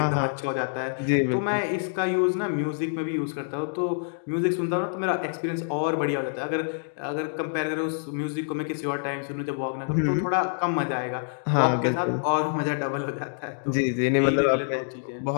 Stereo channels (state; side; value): silent; right; digital silence